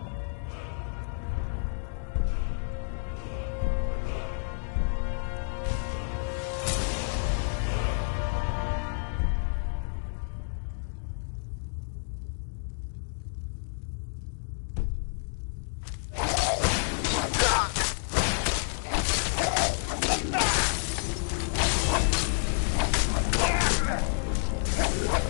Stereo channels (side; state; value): right; silent; digital silence